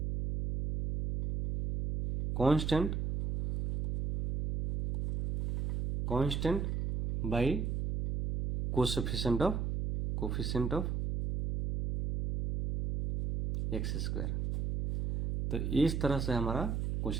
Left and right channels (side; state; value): right; noise; hum, 1 dB below the sound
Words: constant by coefficient of x²। तो इस तरह से हमारा